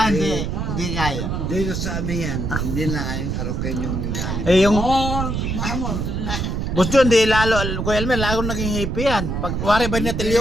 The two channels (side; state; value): right; noise; rumble, 2 dB below the sound